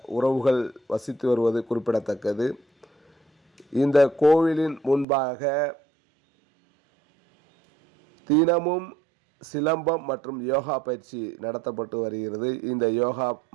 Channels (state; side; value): drops out; left; at 5.1 s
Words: உறவுகள் வசித்து வருவது குறிப்பிடத்தக்கது. இந்த கோவிலின் முன்பாக தினமும் சிலம்பம் மற்றும் யோகா பயிற்சி நடத்தப்பட்டு வருகிறது. இந்த யோகா